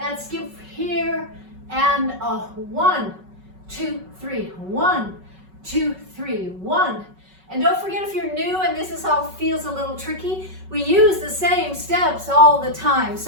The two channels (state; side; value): late; left; 5.3 ms